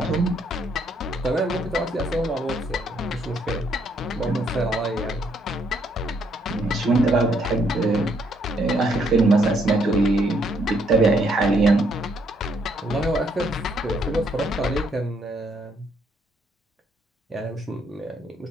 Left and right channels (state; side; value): normal; both; correlation 0.71